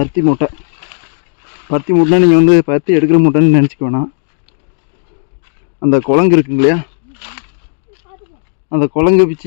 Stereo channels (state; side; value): silent; right; digital silence